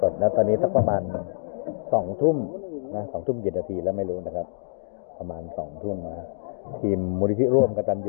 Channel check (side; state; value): right; silent; digital silence